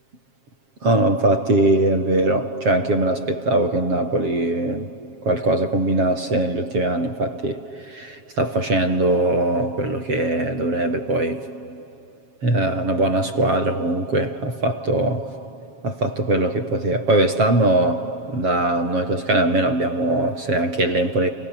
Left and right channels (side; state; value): left; late; 7.4 ms